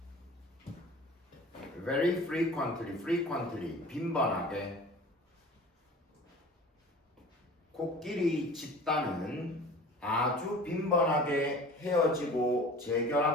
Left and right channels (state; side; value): normal; both; correlation 0.42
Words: very frequently, 빈번하게. 코끼리 집단은 아주 빈번하게 헤어지고